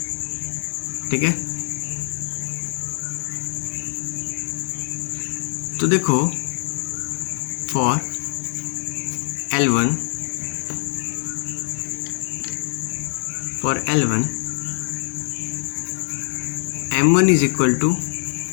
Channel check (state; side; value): silent; right; 63 dB below the other